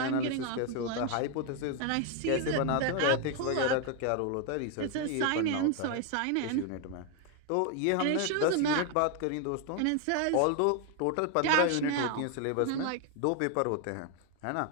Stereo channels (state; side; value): different; both; correlation 0.01